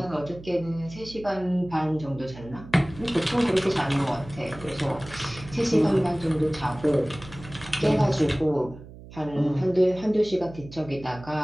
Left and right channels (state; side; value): noise; right; hum, 17 dB below the sound